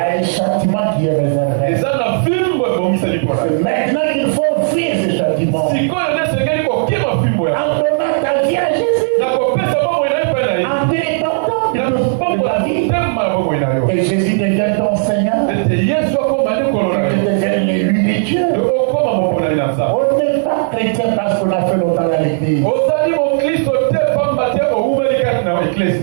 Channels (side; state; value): left; silent; digital silence